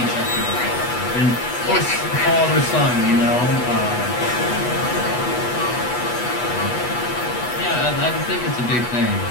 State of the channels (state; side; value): late; right; 8.2 ms